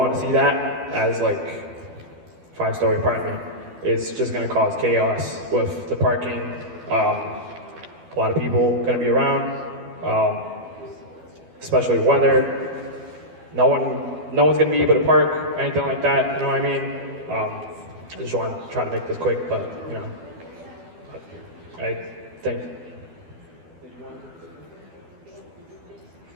to see that as like 5-story apartment. It's just going to cause chaos with the parking. A lot of people going to be around. Especially weather. No one's gonna be able to park, anything like that, you know what I mean? I just want to try to make this quick, but you know, I think,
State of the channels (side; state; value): left; late; 12 ms